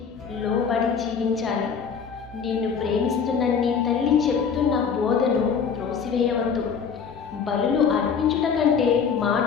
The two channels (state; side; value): quieter; right; 6.4 dB